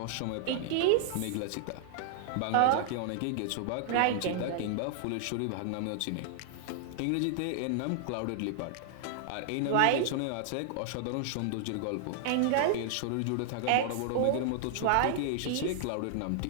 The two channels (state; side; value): different; both; correlation 0.00